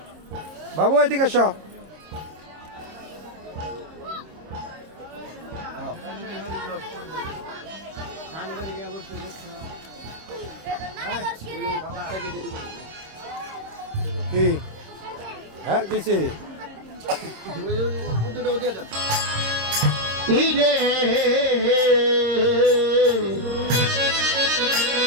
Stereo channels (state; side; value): late; left; 26 ms